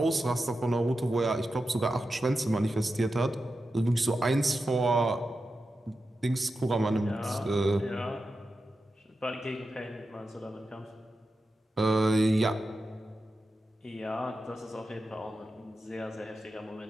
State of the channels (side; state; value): both; normal; correlation 0.91